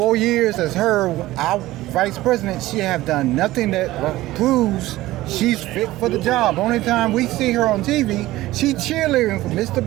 years as our vice president, she have done nothing that proves she's fit for the job. Only time we see her on TV, she cheerleading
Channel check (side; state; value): left; quieter; 16.9 dB